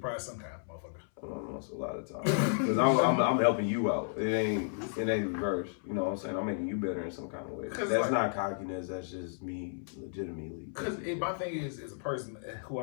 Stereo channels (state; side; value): silent; right; 56 dB below the other